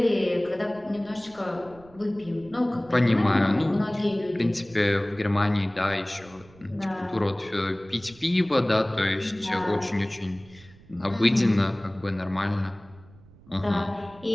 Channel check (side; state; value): right; noise; rumble, 24 dB below the sound